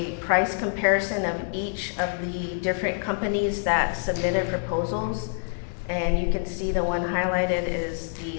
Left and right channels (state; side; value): silent; right; digital silence